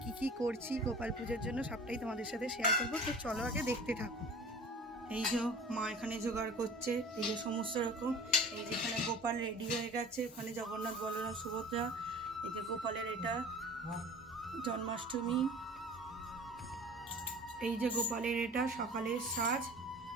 কি করছি গোপাল পুজোর জন্য সবটাই তোমাদের সাথে শেয়ার করবো। তো চলো আগে দেখতে থাকো। এই যে মা এখানে জোগাড় করছে, এই যে সমস্ত রকম। এই যেখানে গোপাল রেডি হয়ে গেছে, ওখানে জগন্নাথ, বলরাম, সুভদ্রা। এই যে গোপালের এটা জন্মাষ্টমী। এই যে গোপালের এটা সকালের সাজ।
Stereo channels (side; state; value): both; normal; correlation 0.41